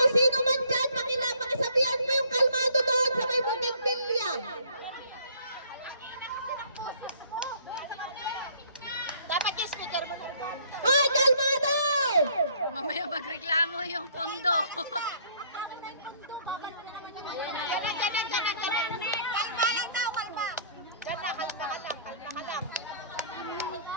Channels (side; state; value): both; inverted; correlation -0.58